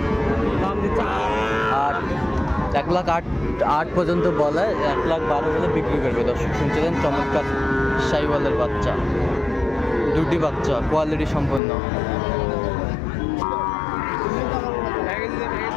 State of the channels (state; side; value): drops out; right; at 11.6 s